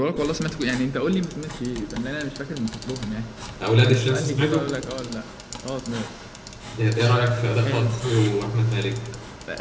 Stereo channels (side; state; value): both; identical; correlation 1.00